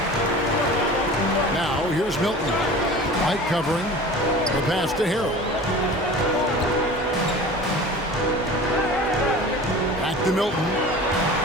Now here's Milton. White covering. The pass to Harrell. Back to Milton.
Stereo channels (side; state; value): both; normal; correlation 0.39